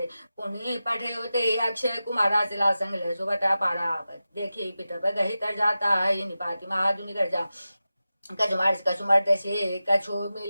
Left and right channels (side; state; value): both; inverted; correlation -0.94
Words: पुनि पठे होते अक्षय कुमारा सिला संग ले सुबटा पारा देखी पिट गही तर जाता है निपाति महादुनि कर जा कछु मारिस कछु मरते से कछु